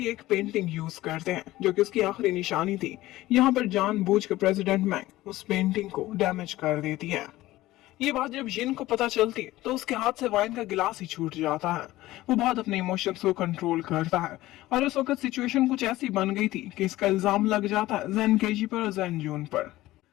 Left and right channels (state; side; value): quieter; right; 16.8 dB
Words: एक पेंटिंग यूज करते हैं जो कि उसकी आखिरी निशानी थी। यहाँ पर जानबूझकर प्रेसिडेंट मैंग उस पेंटिंग को डैमेज कर देती है। ये बात जब जिन को पता चलती है तो उसके हाथ से वाइन का गिलास ही छूट जाता है। वो बहुत अपने इमोशंस को कंट्रोल करता है और उस वक्त सिचुएशन कुछ ऐसी बन गई थी कि इसका इल्जाम लग जाता है जैन केजी पर और जैन जून पर।